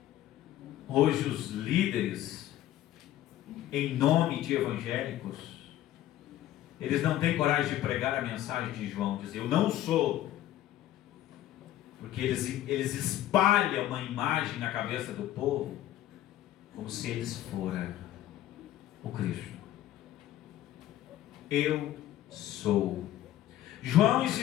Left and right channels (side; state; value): right; quieter; 13.3 dB